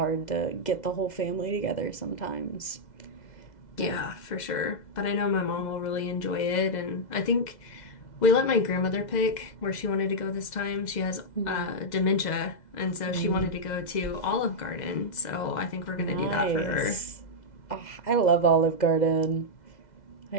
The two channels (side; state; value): right; late; 2.0 ms